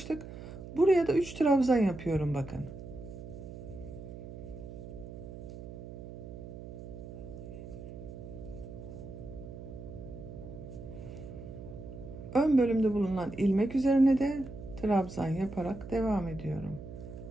Buraya da 3 trabzan yapıyorum bakın. Ön bölümde bulunan ilmek üzerine de trabzan yaparak devam ediyorum.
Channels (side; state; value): right; noise; hum, 12 dB below the sound